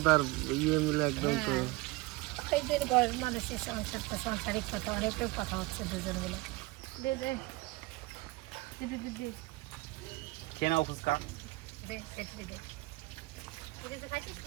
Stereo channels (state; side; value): quieter; left; 22.4 dB